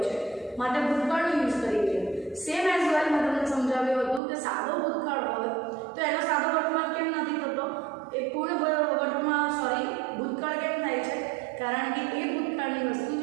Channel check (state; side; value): drops out; left; at 4.2 s